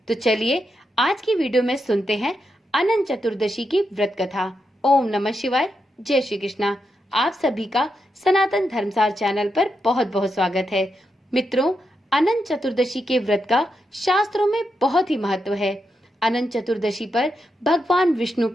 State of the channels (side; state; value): both; normal; correlation 0.85